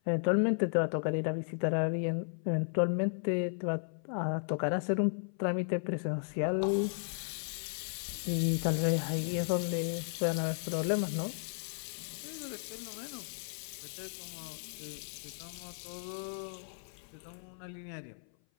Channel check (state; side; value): silent; right; 55 dB below the other